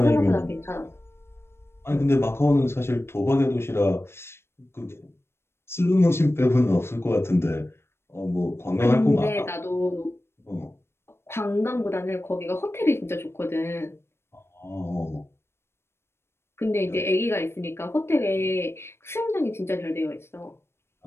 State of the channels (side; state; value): right; late; 0.12 ms